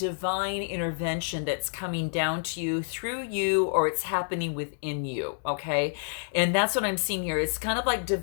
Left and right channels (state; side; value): silent; right; 59 dB below the other